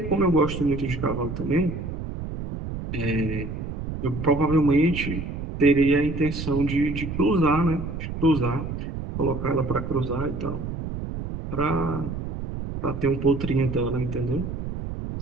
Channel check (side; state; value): right; noise; rumble, 6 dB below the sound